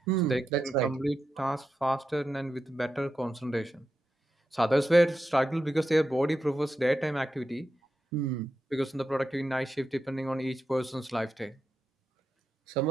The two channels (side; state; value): both; normal; correlation 0.88